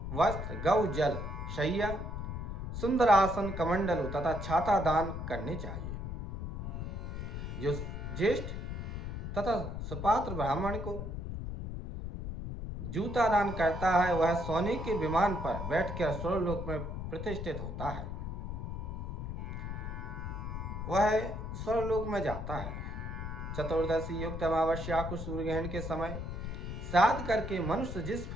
वस्त्र, गौ जल, शैया, सुंदर आसन, कमंडलु तथा छाता दान करने चाहिए। जो ज्येष्ठ तथा सुपात्र ब्राह्मण को जूता दान करता है वह सोने के विमान पर बैठकर स्वर्गलोक में प्रतिष्ठित होता है, वह स्वर्गलोक में जाता है। चतुर्दशी युक्त अमावस्या को सूर्य ग्रहण के समय श्राद्ध करके मनुष्य जिस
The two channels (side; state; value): left; noise; rumble, 5 dB below the sound